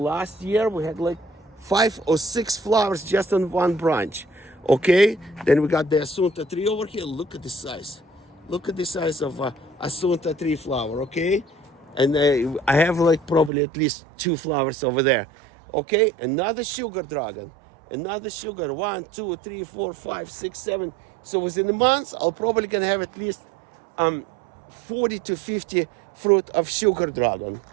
year we had like 5 or 6 flowers just on one branch. Okay, then we got the Asunta tree over here. Look at the size. Look at the size of Asunta tree flower. Okay, and I have like probably at least 2 flowers over there. Okay, another sugar dragon, another sugar. 1, 2, 3, 4, 5, 6, 7. So within a month, I'll probably gonna have at least 40 to 50 fruit of sugar dragon.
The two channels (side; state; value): left; drops out; at 13.5 s